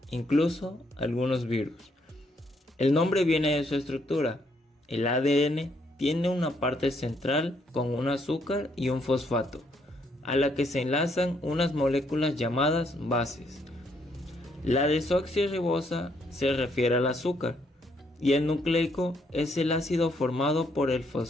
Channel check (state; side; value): normal; both; correlation 0.72